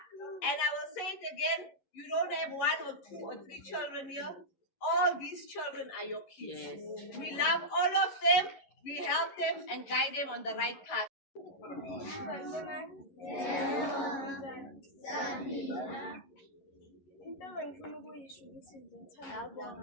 And I will say it again, you don't have 1 or 2 or 3 children here. All these children are your kids. Yes. We love all of them. We help them and guide them on the right path. Into engifuna ukuyisho ukuthi ngithanda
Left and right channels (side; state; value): right; late; 11 ms